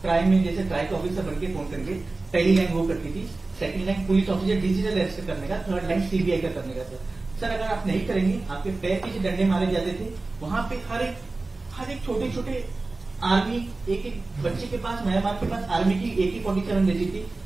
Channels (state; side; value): quieter; left; 3.4 dB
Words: ट्राई में जैसे ट्राई के ऑफिसर बनके फोन करके पहली लाइन वो करती थी, second line police officer digital arrest करने का, थर्ड लाइन सीबीआई का करने का. सर अगर आप नहीं करेंगे, आपके पैर पीछे डंडे मारे जाते थे. वहां पे हर एक छोटे आर्मी, एक बच्चे के पास, म्यांमार के पास आर्मी की AK-47 रहती थी.